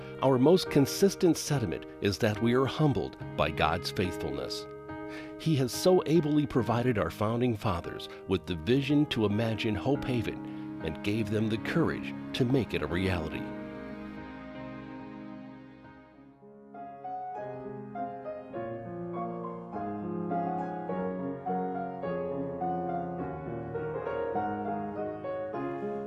our most consistent sentiment is that we are humbled by God's faithfulness. He has so ably provided our founding fathers with the vision to imagine Hope Haven and gave them the courage to make it a reality.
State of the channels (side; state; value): both; identical; correlation 1.00